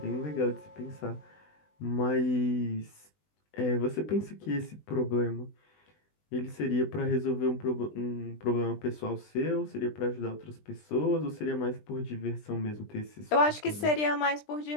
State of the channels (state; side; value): late; right; 20 ms